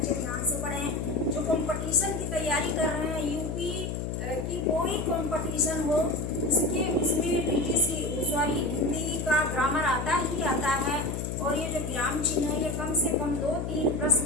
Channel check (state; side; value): noise; left; hum, 3 dB below the sound